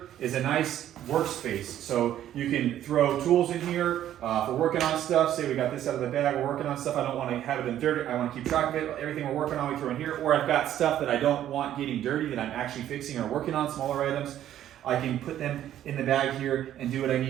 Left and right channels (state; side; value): quieter; left; 11.7 dB